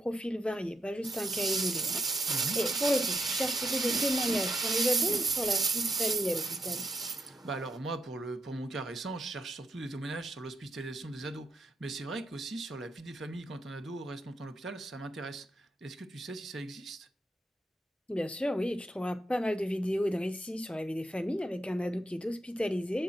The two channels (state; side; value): normal; both; correlation 0.79